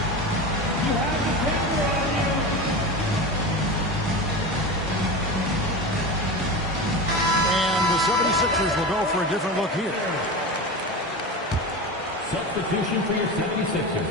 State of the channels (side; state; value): both; normal; correlation 0.25